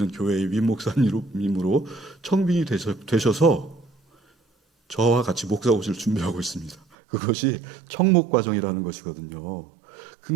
교회의 위임 목사님으로 청빙이 되셔서 저와 같이 목사고시를 준비하고 있습니다. 그것이 청목 과정이라는 것이거든요.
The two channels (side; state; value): left; drops out; at 6.8 s